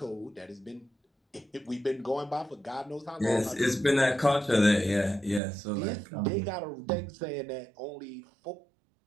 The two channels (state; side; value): drops out; left; at 5.4 s